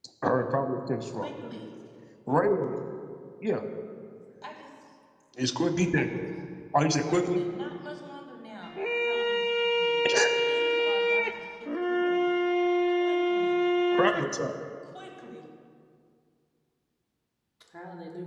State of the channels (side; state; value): both; identical; correlation 1.00